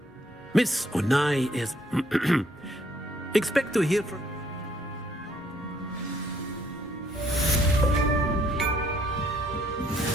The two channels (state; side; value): normal; both; correlation 0.67